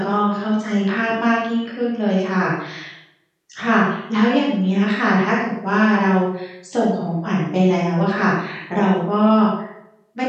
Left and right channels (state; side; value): identical; both; correlation 1.00